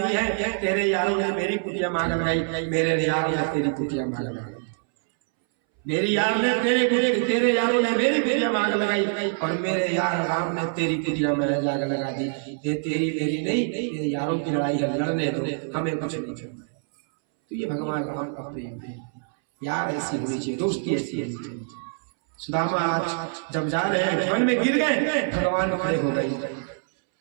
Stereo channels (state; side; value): silent; left; 62 dB below the other